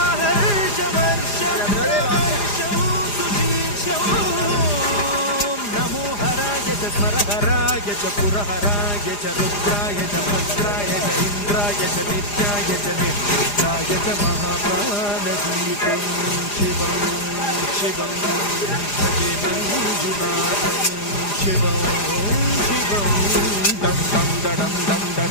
सुशीर्षं नमो हराय च स्मरहराय च पुरहराय च रुद्राय च भद्राय च इन्द्राय च नित्याय च निर्विघ्नाय च महाप्राणदीपं शिवं शिवं भजे मञ्जुनाथं शिवं शिवं दं दं दडं दं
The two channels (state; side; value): late; right; 4.9 ms